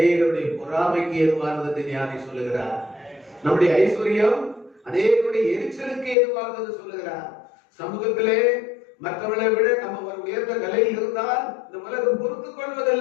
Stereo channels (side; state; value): right; drops out; at 6.2 s